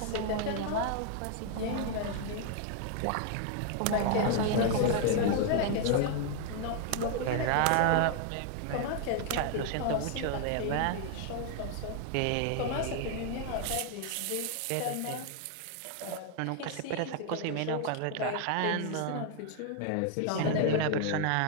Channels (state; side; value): different; both; correlation 0.00